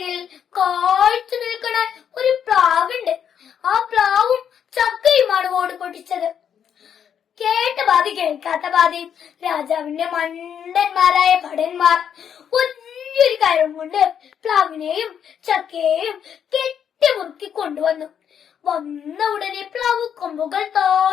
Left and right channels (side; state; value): right; quieter; 8.4 dB